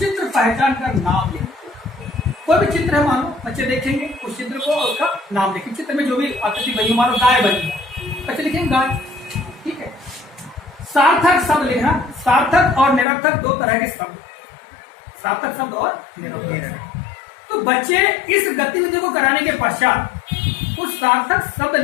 पहचान कर नाम लिखना। कोई भी चित्र है, मानो बच्चे देखेंगे उस चित्र को और उसका नाम लिखेंगे। चित्र में जो भी आकृति बनी, मानो गाय बनी, बच्चे लिखेंगे गाय। ठीक है, सार्थक शब्द लिखना। सार्थक और निरर्थक दो तरह के शब्द, सार्थक शब्द और निरर्थक। तो बच्चे इस गतिविधि को कराने के पश्चात उस सार्थक शब्द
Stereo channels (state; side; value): drops out; right; at 13.1 s